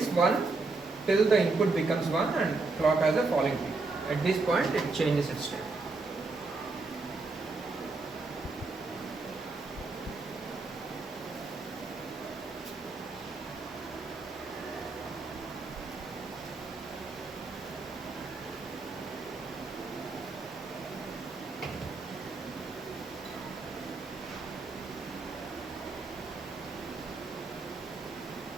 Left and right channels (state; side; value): quieter; left; 3.7 dB